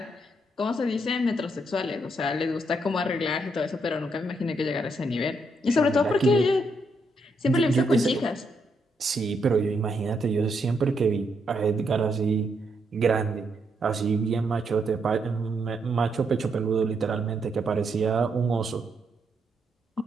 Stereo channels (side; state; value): both; normal; correlation 0.77